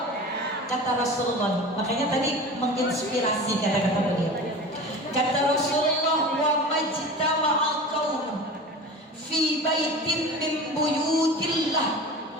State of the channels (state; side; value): normal; both; correlation 0.34